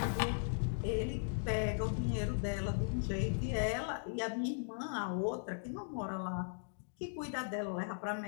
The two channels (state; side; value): silent; right; digital silence